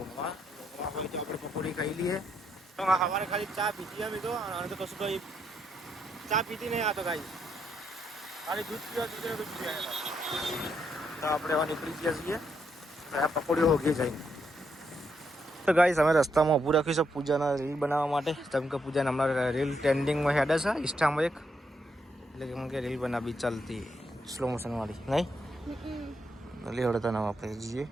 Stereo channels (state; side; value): normal; both; correlation 0.78